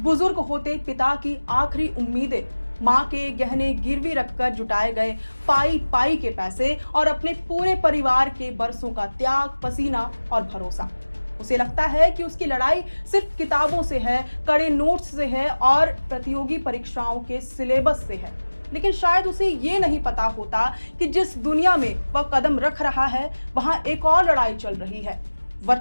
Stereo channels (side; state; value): both; inverted; correlation -1.00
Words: होते पिता की आखिरी उम्मीदें, माँ के गहने गिरवी रखकर जुटाए गए पाई पाई के पैसे और अपने पूरे परिवार के बरसों का त्याग, पसीना और भरोसा। उसे लगता है कि उसकी लड़ाई सिर्फ किताबों से है, कड़े नोट्स से है और प्रतियोगी परीक्षाओं के सिलेबस से है। लेकिन शायद उसे ये नहीं पता होता कि जिस दुनिया में वह कदम रख रहा है वहां एक और लड़ाई चल रही है।